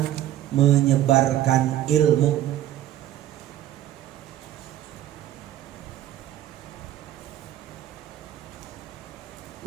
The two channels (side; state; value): left; quieter; 12.8 dB